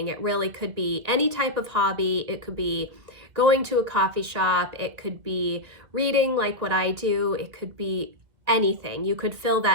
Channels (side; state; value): left; late; 2.2 ms